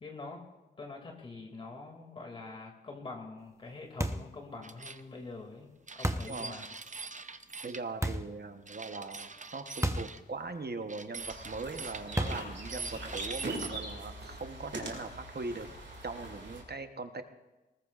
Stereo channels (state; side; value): normal; both; correlation 0.51